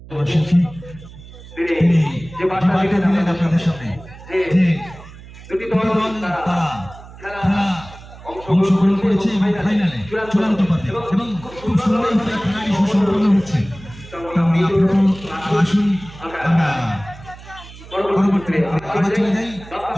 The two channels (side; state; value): right; noise; hum, 18 dB below the sound